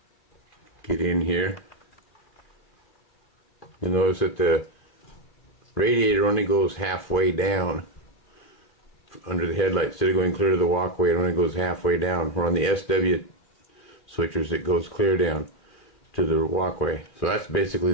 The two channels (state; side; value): late; right; 2.4 ms